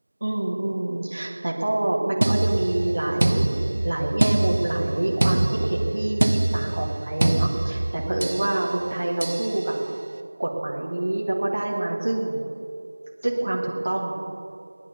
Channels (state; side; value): inverted; both; correlation -1.00